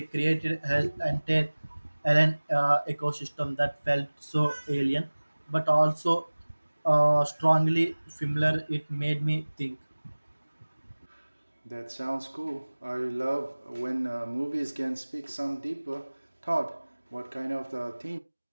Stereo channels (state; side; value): inverted; both; correlation -1.00